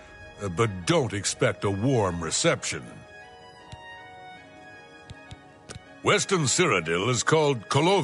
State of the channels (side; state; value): both; identical; correlation 1.00